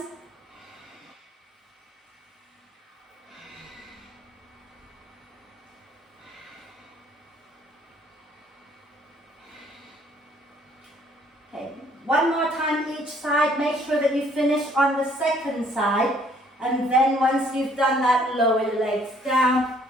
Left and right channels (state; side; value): normal; both; correlation 0.62